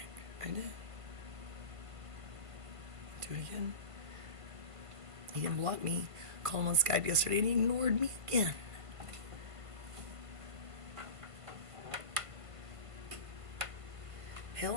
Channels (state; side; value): late; left; 1.5 ms